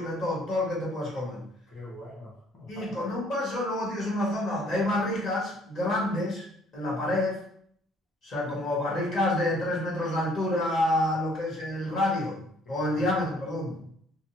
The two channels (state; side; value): normal; both; correlation 0.61